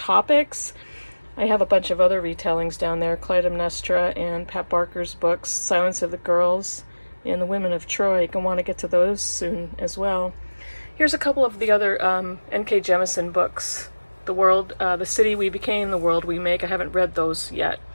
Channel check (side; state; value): both; inverted; correlation -1.00